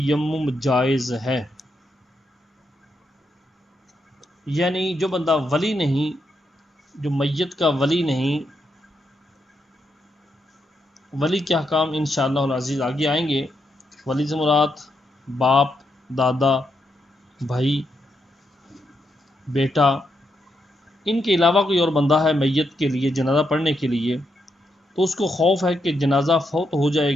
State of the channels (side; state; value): both; normal; correlation 0.81